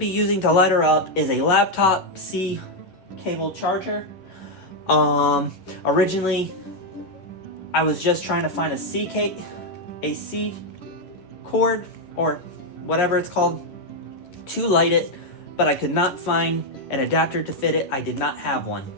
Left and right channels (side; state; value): right; late; 11 ms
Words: using to light her up is a laptop C cable charger. Originally, I was just trying to find a C cord, or whatever it's called, to light it, but I could not find an adapter to fit it. I did not have one.